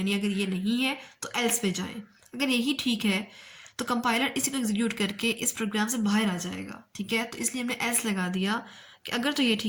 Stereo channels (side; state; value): both; identical; correlation 1.00